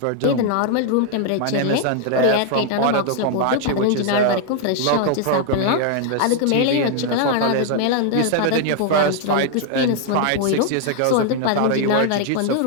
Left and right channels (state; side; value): different; both; correlation 0.00